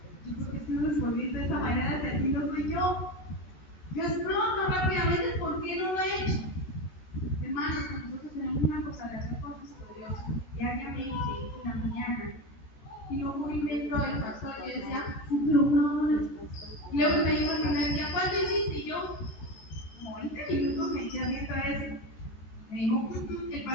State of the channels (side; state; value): right; late; 13 ms